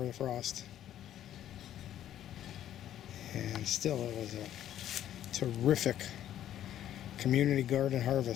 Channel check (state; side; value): quieter; right; 11.5 dB